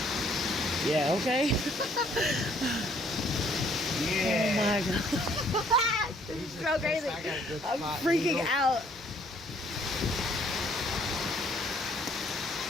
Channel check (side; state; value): both; normal; correlation 0.63